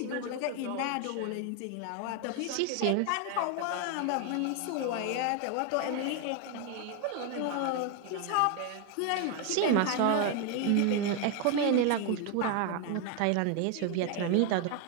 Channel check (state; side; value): different; both; correlation 0.01